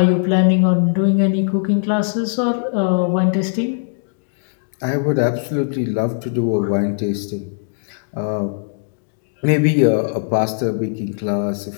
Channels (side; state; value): right; silent; digital silence